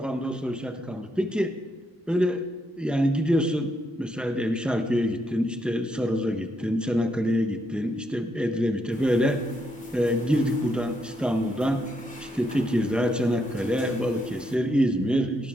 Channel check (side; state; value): both; normal; correlation 0.78